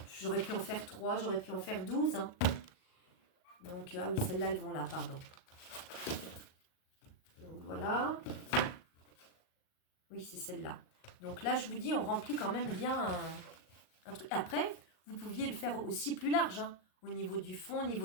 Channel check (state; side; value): late; right; 38 ms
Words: J'aurais pu en faire 3, j'aurais pu en faire 12. Hein. Donc, ah oui, celles-là, elles vont là, pardon. Donc voilà. Oui, c'est celle-là. Donc là, je vous dis, on remplit quand même bien un truc. Après, vous pouviez le faire aussi plus large, hein. Au niveau du fond, au